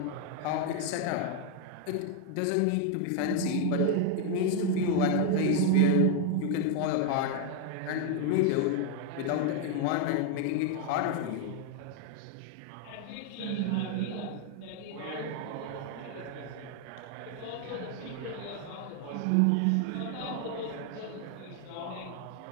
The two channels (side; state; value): both; different; correlation 0.00